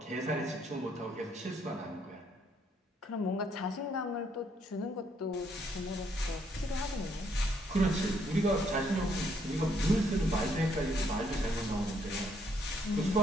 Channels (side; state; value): both; normal; correlation 0.70